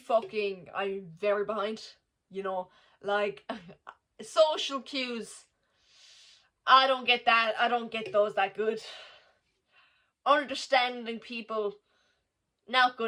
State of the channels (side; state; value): both; identical; correlation 1.00